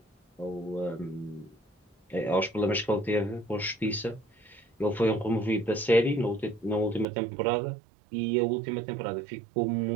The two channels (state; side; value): drops out; left; at 7.1 s